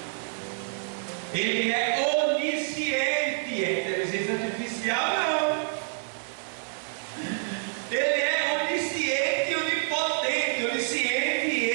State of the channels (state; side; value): silent; left; digital silence